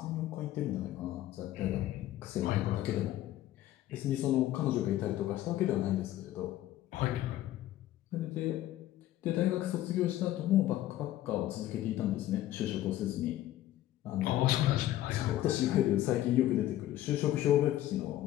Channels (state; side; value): quieter; right; 14.0 dB